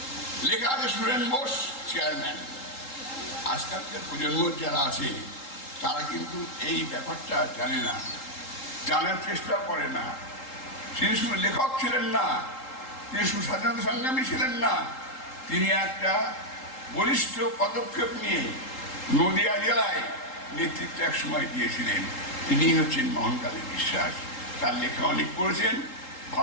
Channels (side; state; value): right; late; 3.8 ms